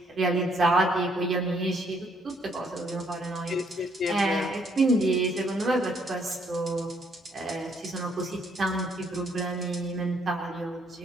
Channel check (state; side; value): normal; both; correlation 0.69